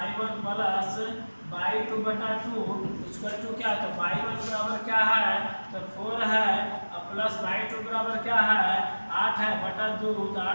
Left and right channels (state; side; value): inverted; both; correlation -1.00